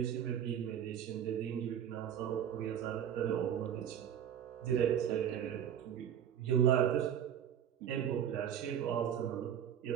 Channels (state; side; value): quieter; left; 9.6 dB